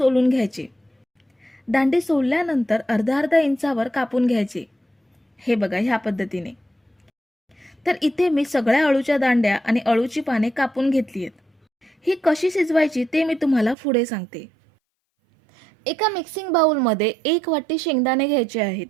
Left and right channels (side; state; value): left; drops out; at 13.8 s